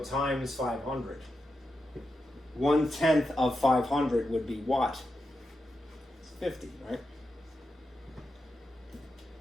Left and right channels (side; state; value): both; normal; correlation 0.88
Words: times 500. 1/10 of 500 would be what? It's 50, right?